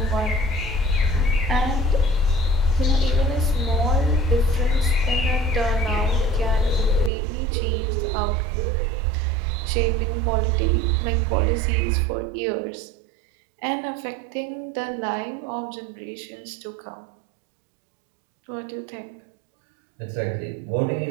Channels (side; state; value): left; drops out; at 7.1 s